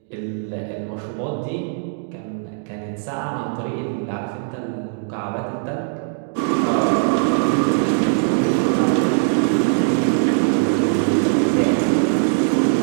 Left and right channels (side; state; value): left; silent; digital silence